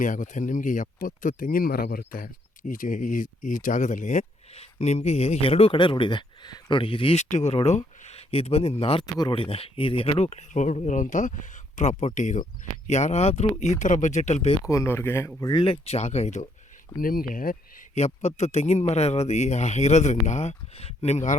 ಆಗುತ್ತೆ. ನಿಮಗೆ 70 ತೆಂಗಿನ ಮರ ಬರುತ್ತೆ ಈ ಜಾಗದಲ್ಲಿ. ನಿಮಗೆ ಎರಡೂ ಕಡೆ ರೋಡ್ ಇದೆ ನೋಡಿ. ಇದು ಈಸ್ಟಿಗೂ ರೋಡು, ಇದು ಬಂದು ನಾರ್ತ್ಗೂ ರೋಡ್ ಇದೆ. ಇದು ಎರಡೂ ಕಡೆ ರೋಡ್ ಇರೋವಂಥ ಪ್ರಾಪರ್ಟಿ ಇದು. ಯಾರಾದರೂ ಈ ಥರ ಬಜೆಟಲ್ಲಿ ಬೇಕು ಅನ್ನೋರಿಗೆ ಒಳ್ಳೆ ಜಾಗ ಇದು. ನಿಮಗೆ 70 ತೆಂಗಿನ ಮರ ಇರೋದ್ರಿಂದ ನಿಮ್ಗೆ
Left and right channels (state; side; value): normal; both; correlation 0.71